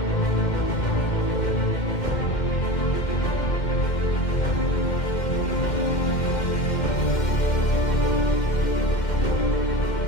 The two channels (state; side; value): late; right; 2.1 ms